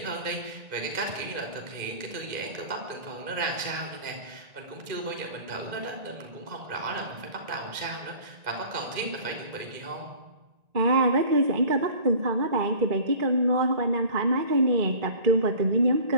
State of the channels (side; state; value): left; late; 1.9 ms